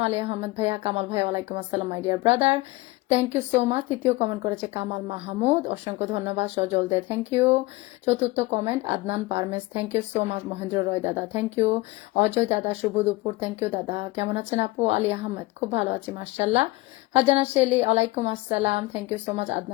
আলী আহমেদ ভাইয়া, কামাল ভাইয়া, ওয়ালাইকুম আসসালাম my dear brother, thank you so much. তৃতীয় কমেন্ট করেছে কামাল মাহমুদ, অসংখ্য ধন্যবাদ। Sajal Dey, thank you. চতুর্থ comment Adnan Parmes, thank you so much. Mahendra Roy দাদা, থ্যাংক ইউ। অজয় দাদা, শুভ দুপুর, থ্যাংক ইউ দাদা। কেমন আছেন আপু? আলী আহমেদ, খুব ভালো আছি মাশাআল্লাহ। ফারজানা শেলি, ওয়ালাইকুম আসসালাম, thank you so much.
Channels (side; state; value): right; quieter; 21.3 dB